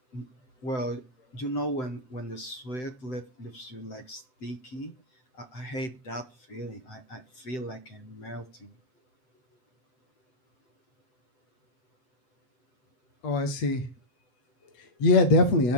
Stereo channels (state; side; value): late; right; 7.8 ms